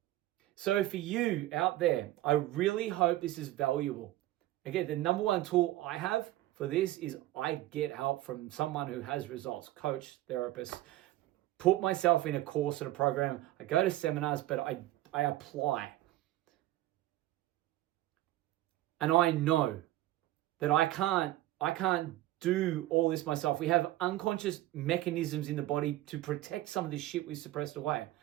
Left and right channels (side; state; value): left; quieter; 15.7 dB